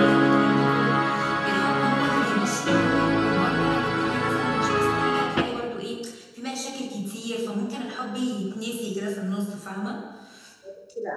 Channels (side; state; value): both; identical; correlation 1.00